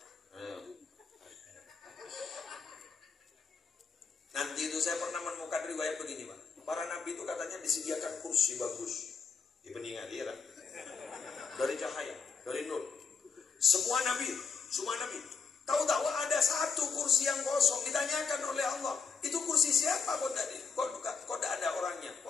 Nanti itu saya pernah menemukan riwayat begini, Pak. Para nabi itu katanya disediakan kursi bagus di peninggal dia, dari cahaya, dari nur. Semua nabi. Tahu-tahu ada satu kursi yang kosong, ditanyakan oleh Allah, itu kursi kursi siapa kok tidak ada orangnya,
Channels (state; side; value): quieter; right; 5.5 dB